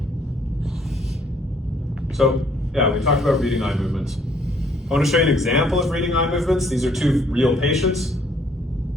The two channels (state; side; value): normal; both; correlation 0.64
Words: So, yeah, we talked about reading eye movements. I want to show you an example of reading eye movements. These are two real patients.